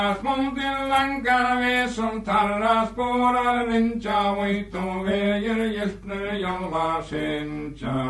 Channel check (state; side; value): identical; both; correlation 1.00